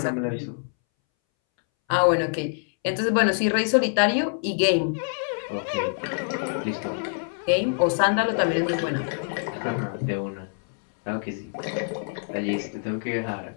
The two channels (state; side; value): silent; right; 61 dB below the other